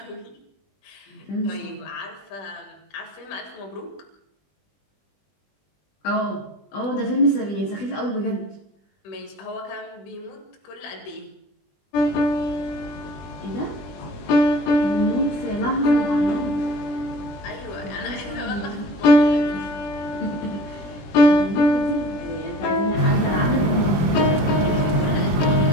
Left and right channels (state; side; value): late; right; 20 ms